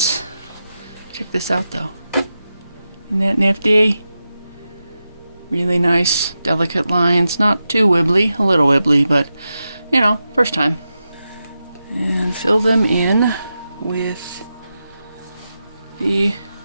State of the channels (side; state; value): both; inverted; correlation -0.90